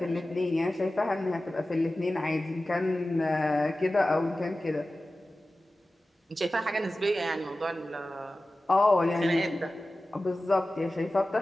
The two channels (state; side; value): normal; both; correlation 0.96